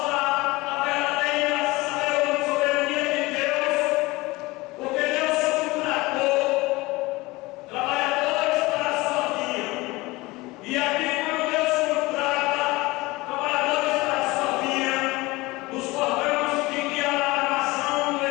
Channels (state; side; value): quieter; right; 21.7 dB